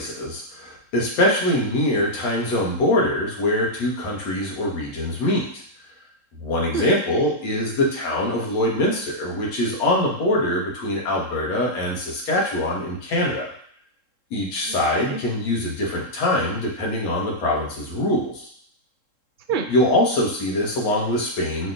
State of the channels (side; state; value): right; late; 3.7 ms